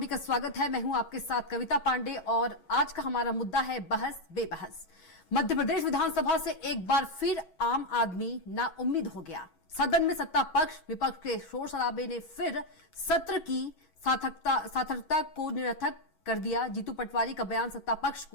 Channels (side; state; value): right; late; 11 ms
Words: का स्वागत है। मैं हूं आपके साथ कविता पांडे और आज का हमारा मुद्दा है बहस बेबहस। मध्य प्रदेश विधानसभा से एक बार फिर आम आदमी नाउम्मीद हो गया। सदन में सत्ता पक्ष विपक्ष के शोर शराबे ने फिर सत्र की सार्थकता को निरर्थक कर दिया। जीतू पटवारी का बयान सत्ता पक्ष